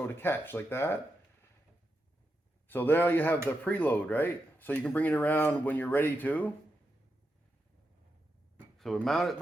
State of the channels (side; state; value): both; normal; correlation 0.86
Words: to catch, like that. So there you have the preload, right? So you can bring it around when you're ready to. So we mount it